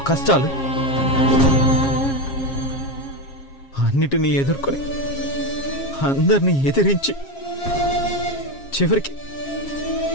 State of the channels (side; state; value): right; late; 7.4 ms